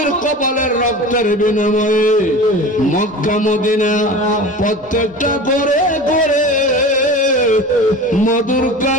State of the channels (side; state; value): both; normal; correlation 0.35